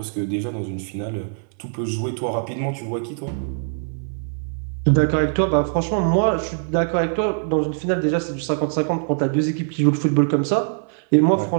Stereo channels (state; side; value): silent; left; 59 dB below the other